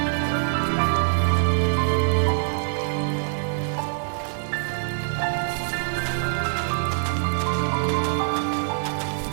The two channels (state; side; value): silent; left; digital silence